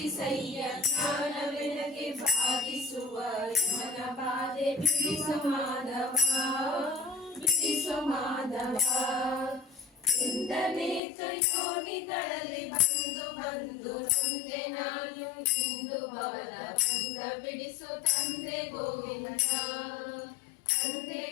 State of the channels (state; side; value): drops out; right; at 11.0 s